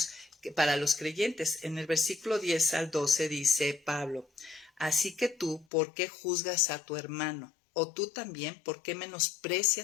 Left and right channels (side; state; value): right; drops out; at 5.7 s